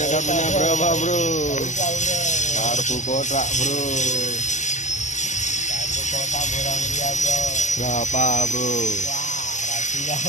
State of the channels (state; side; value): late; right; 0.34 ms